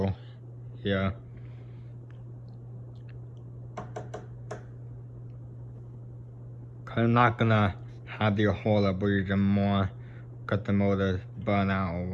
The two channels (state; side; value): identical; both; correlation 1.00